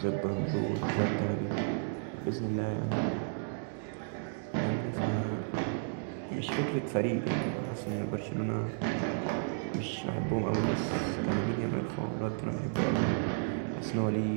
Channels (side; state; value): left; silent; digital silence